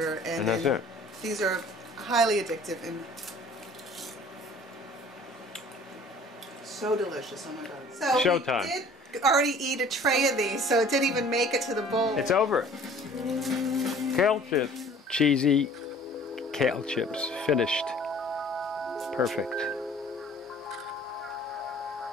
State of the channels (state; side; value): normal; both; correlation 0.50